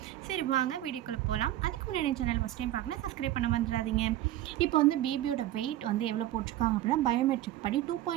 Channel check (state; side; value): quieter; left; 13.9 dB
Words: சரி வாங்க வீடியோக்குள்ளே போகலாம். அதுக்கு முன்னாடி சேனல் ஃபஸ்ட் டைம் பார்க்கணும், சப்ஸ்கிரைப் பண்ண வந்துடாதீங்க. இப்போ வந்து பேபியோட வெயிட் வந்து எவ்வளோ போட்டிருக்காங்க அப்படின்னா பயோமெட்ரிக் படி